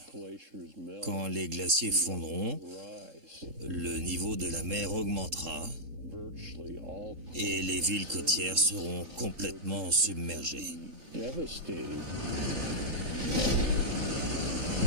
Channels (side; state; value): left; late; 3.7 ms